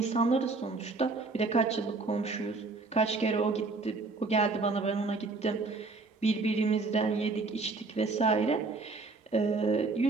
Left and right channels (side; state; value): left; quieter; 3.7 dB